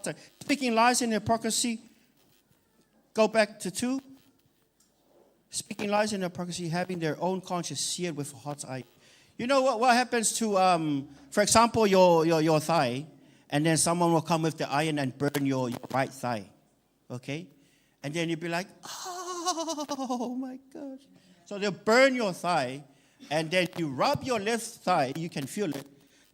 iron. Speaking lies in hypocrisy. Go back to 2. Speaking lies in hypocrisy, having their own conscience seared with a hot iron. You know what happens to, for example, your thigh, and then someone will come with the iron and burn your right thigh, okay? And then you'll be like, oh my gosh. So they'll burn your thigh, and then you rub your left thigh, you can feel it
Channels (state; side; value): identical; both; correlation 1.00